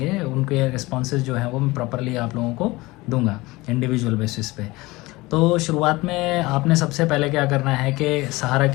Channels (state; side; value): quieter; right; 21.2 dB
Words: उनके रिस्पॉन्सेज जो हैं वो मैं प्रॉपरली आप लोगों को दूंगा इंडिविजुअल बेसिस पे। तो शुरुआत में आपने सबसे पहले क्या करना है कि सहारा